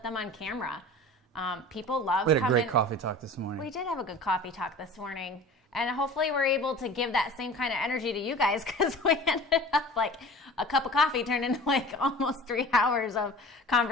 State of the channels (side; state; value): both; normal; correlation 0.40